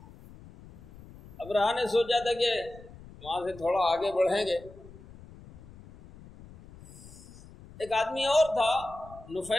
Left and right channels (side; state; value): left; noise; rumble, 19 dB below the sound